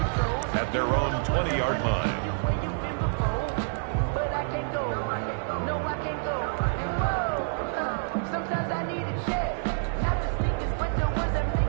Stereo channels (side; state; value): left; silent; digital silence